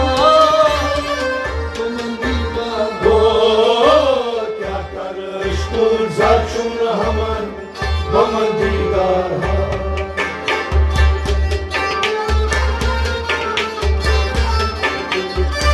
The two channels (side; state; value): both; identical; correlation 1.00